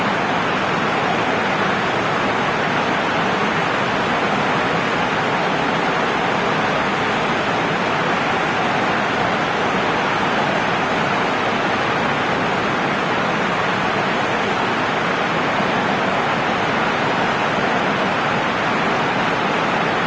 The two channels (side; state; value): both; identical; correlation 1.00